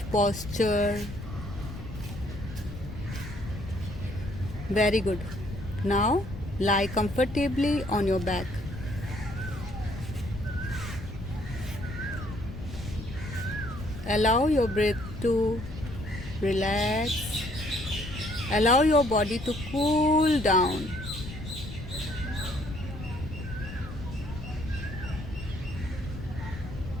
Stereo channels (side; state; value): left; noise; rumble, 10 dB below the sound